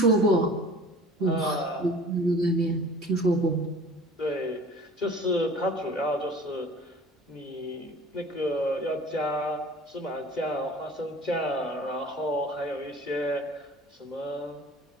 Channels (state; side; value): normal; both; correlation 0.45